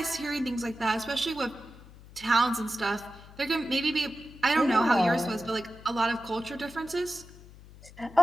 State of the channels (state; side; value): noise; left; hum, 20 dB below the sound